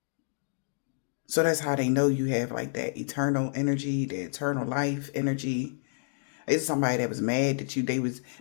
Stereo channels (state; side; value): silent; right; digital silence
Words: So that's how they know you have like that eternal energy, the eternal life energy. It's somebody that was mad that